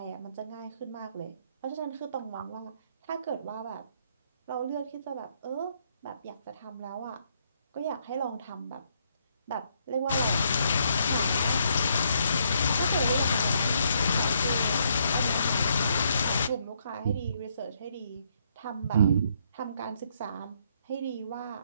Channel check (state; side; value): inverted; both; correlation -0.72